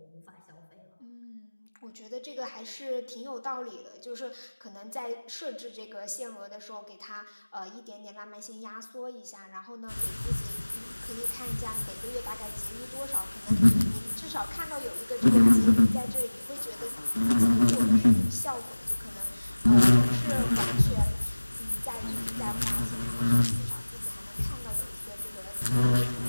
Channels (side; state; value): both; inverted; correlation -1.00